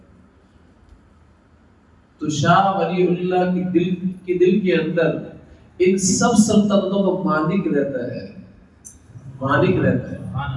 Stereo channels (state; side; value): identical; both; correlation 1.00